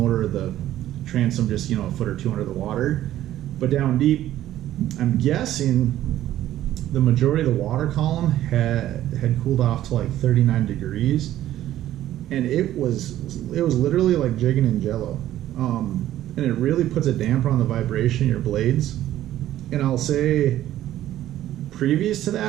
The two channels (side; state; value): left; quieter; 13.1 dB